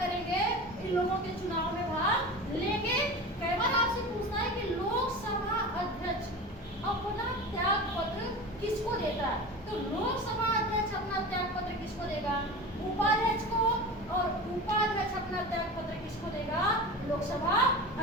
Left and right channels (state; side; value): normal; both; correlation 0.31